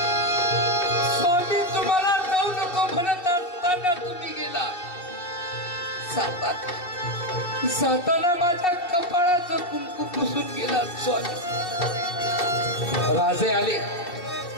स्वामी तुम्हाला जाऊ नको म्हणत असताना तुम्ही गेला. जाताना माझ्या कपाळाचं कुंकू पुसून गेला. स्वामी. राजे आले.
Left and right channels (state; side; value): late; right; 2.7 ms